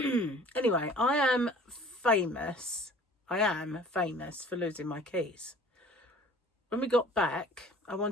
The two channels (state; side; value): normal; both; correlation 0.48